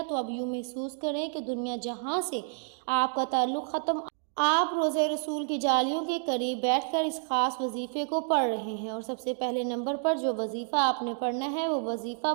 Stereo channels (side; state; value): left; silent; 58 dB below the other